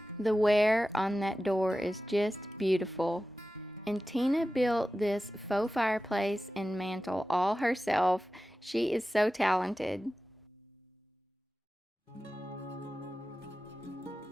The wear on that door is just beautiful. And Tina built this faux fireplace and mantle all herself. She is so talented.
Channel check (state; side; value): normal; both; correlation 0.94